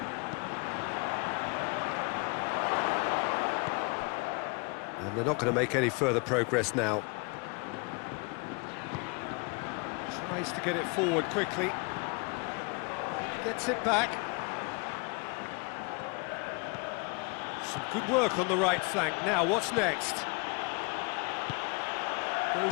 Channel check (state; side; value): quieter; right; 31.6 dB